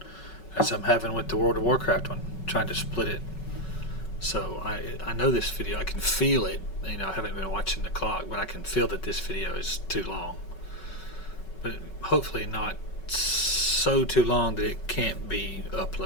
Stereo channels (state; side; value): late; right; 5.4 ms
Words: as I'm having with the World of Warcraft one. trying to split it. So I know this video, I can feel it. You know, I haven't been watching the clock, but I can feel that this video is too long. But hopefully not so too long that it can't be